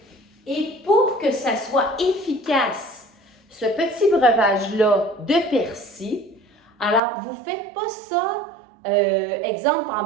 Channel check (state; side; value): drops out; left; at 7.0 s